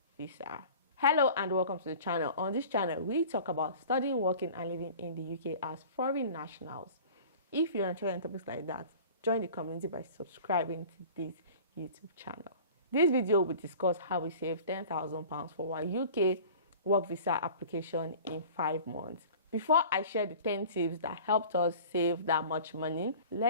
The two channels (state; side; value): inverted; both; correlation -0.43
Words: visa. Hello and welcome to the channel. On this channel, we talk about studying, working and living in the UK as foreign nationals. If you're interested in topics like that, join the community by subscribing to this YouTube channel. This video will discuss how we save £10,000 for our UK work visa application in 5 months. Before I share the 10 tips that helped us save that much money,